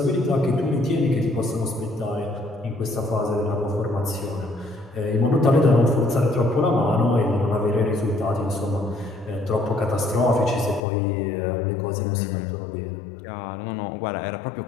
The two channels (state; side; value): drops out; right; at 10.8 s